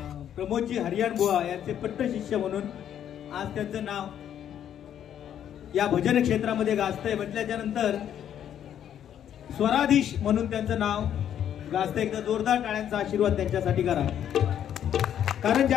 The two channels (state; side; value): quieter; right; 9.9 dB